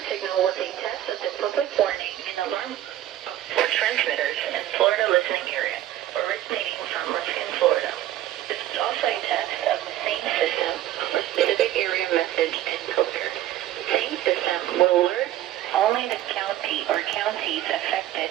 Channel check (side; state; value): left; quieter; 13.3 dB